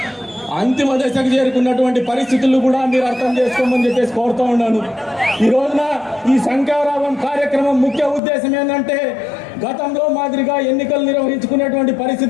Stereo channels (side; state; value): right; drops out; at 8.2 s